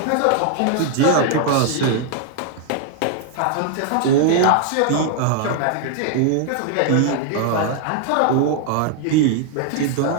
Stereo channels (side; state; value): both; different; correlation 0.00